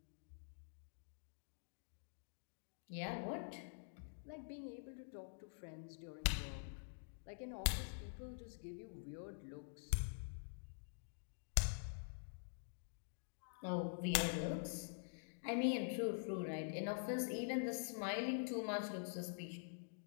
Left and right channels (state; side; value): silent; right; digital silence